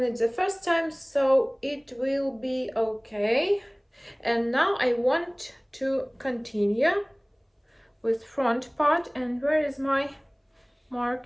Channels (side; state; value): both; identical; correlation 1.00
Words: it the first time, so it will be okay. And now I want to continue with front part. And where is my